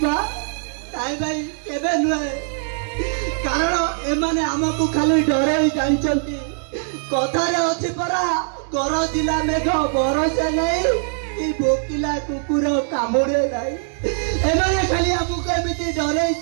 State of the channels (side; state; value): left; silent; digital silence